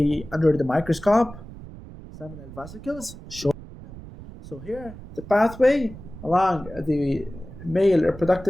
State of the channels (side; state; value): right; noise; rumble, 15 dB below the sound